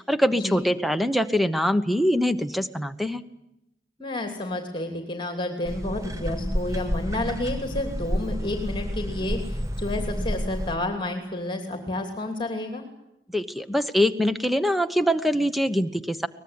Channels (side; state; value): both; normal; correlation 0.82